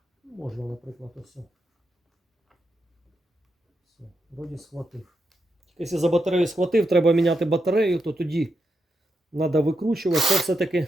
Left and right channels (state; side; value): normal; both; correlation 0.84